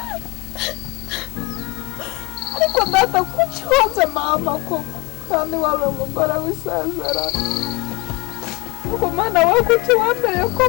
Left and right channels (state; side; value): quieter; right; 23.8 dB